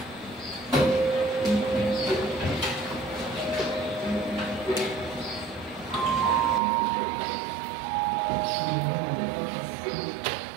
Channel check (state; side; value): drops out; left; at 6.6 s